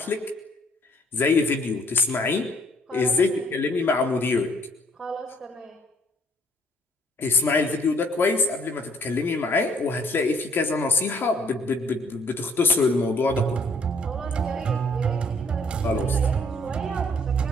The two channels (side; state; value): both; normal; correlation 0.63